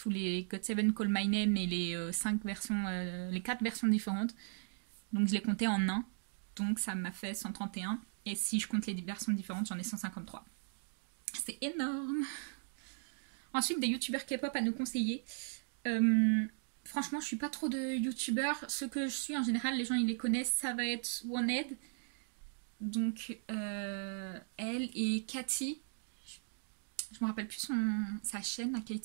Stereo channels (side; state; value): left; silent; digital silence